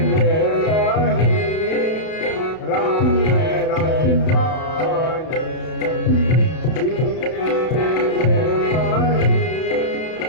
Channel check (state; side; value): late; right; 32 ms